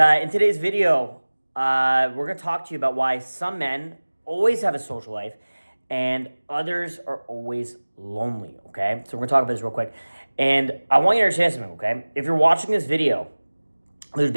today's video, we're going to talk to you about why some men always have a social life and others are always lonely, okay? So we're going to talk about this real quick. And I want you to understand something, okay? If you're watching this video, there's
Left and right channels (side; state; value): both; inverted; correlation -1.00